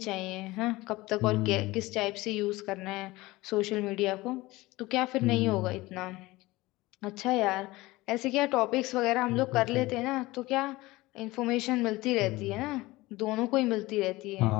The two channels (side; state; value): right; quieter; 19.9 dB